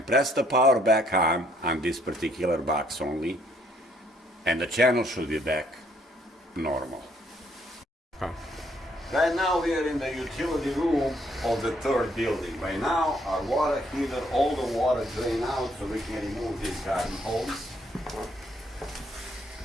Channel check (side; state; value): both; normal; correlation 0.67